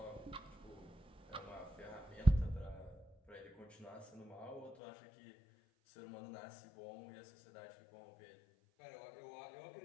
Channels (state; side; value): drops out; right; at 4.8 s